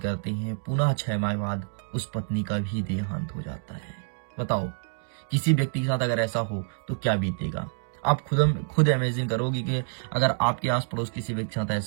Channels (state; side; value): silent; left; digital silence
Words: हैं, पुनः 6 माह बाद उस पत्नी का भी देहांत हो जाता है। बताओ किसी व्यक्ति के साथ अगर ऐसा हो तो क्या बीतेगा। आप खुद इमेजिन करोगे कि अगर आपके आस पड़ोस किसी व्यक्ति के साथ